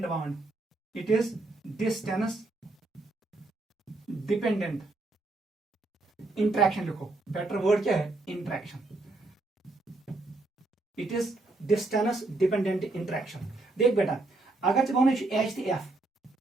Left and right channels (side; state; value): left; quieter; 3.1 dB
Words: bond. It is distance dependent interaction लिखो। बेटर वर्ड क्या है? Interaction. It is distance dependent interaction. देख बेटा, अगर जब H